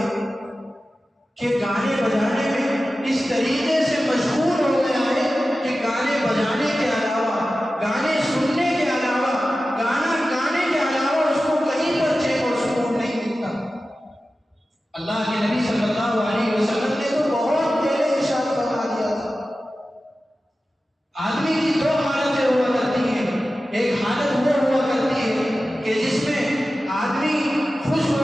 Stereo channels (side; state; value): both; normal; correlation 0.94